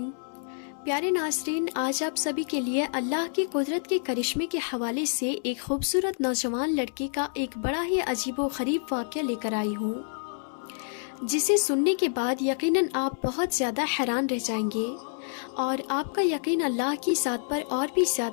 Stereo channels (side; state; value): right; silent; 59 dB below the other